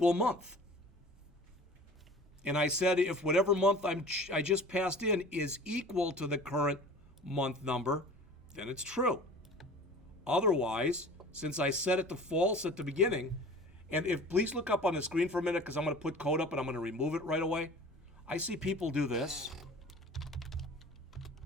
month. And I said if whatever month I just passed in is equal to the current month number, then it's true. Otherwise, since I set it to false at the beginning, and if please look up on the screen for a minute because I'm going to put code up and I'm going to remove it right away. I see people do this.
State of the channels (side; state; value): both; normal; correlation 0.42